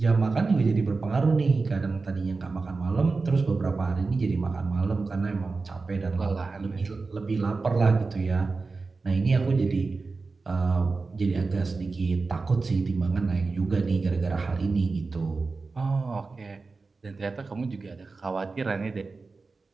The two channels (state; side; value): quieter; left; 4.0 dB